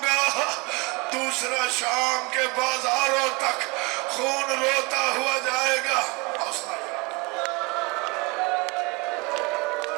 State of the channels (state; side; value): quieter; left; 27.3 dB